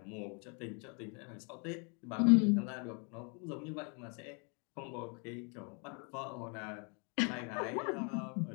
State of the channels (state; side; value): quieter; right; 36.0 dB